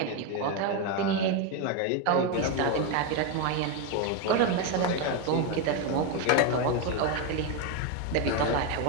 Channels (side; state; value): both; different; correlation 0.02